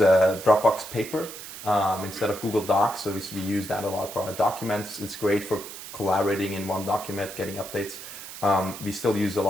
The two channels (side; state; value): right; noise; hiss, 12 dB below the sound